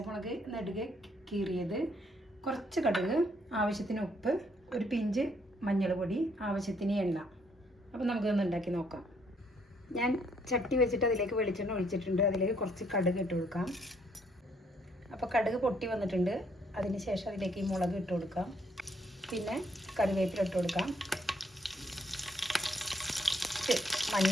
നെടുകെ കീറിയത്, കുറച്ച് കടുക്, ആവശ്യത്തിന് ഉപ്പ്, ഒരു പിഞ്ച് മഞ്ഞൾ പൊടി, ആവശ്യത്തിന് എണ്ണ. അപ്പോൾ നമുക്കിതൊന്ന് ഉണ്ടാക്കി നോക്കാം. ഞാൻ ചട്ടി വെച്ചിട്ട് അതിലേക്ക് വെളിച്ചെണ്ണ ഒഴിച്ചിട്ടുണ്ട്. അതിലേക്ക് കുറച്ച് കടുക് ഇട്ട് കൊടുക്കാം. അപ്പോൾ കടുക് പൊട്ടി വന്നിട്ടുണ്ട്. അതിന് ശേഷം അതിലേക്ക് ഈ മുളക് ഇട്ട് കൊടുക്കാം. പിന്നെ കറിവേപ്പില ഇട്ട് കൊടുക്കാം.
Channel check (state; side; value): normal; both; correlation 0.69